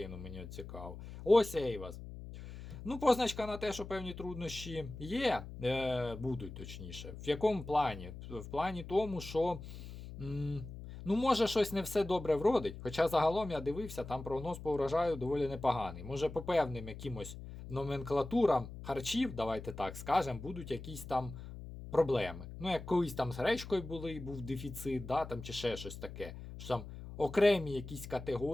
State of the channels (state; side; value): noise; left; hum, 12 dB below the sound